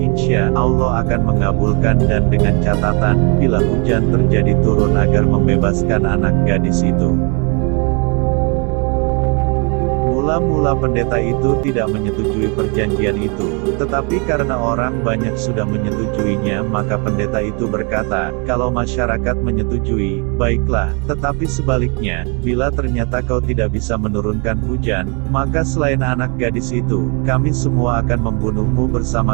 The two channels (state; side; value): quieter; left; 34.1 dB